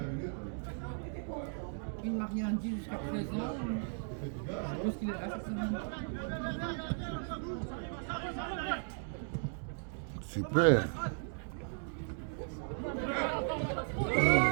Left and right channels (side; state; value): left; silent; 54 dB below the other